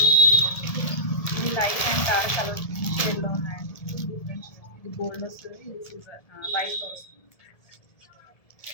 ఇది లైట్ అండ్ డార్క్ కలర్ షేడ్లో ఉన్నాయండి. Different shade. ఇది గోల్డ్ వస్తుంది, ఇది సిల్వర్ వైట్లో వస్తుంది.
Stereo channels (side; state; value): right; late; 1.7 ms